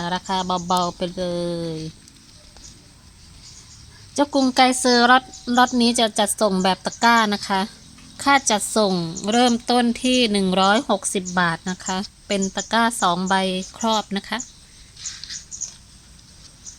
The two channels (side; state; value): both; identical; correlation 1.00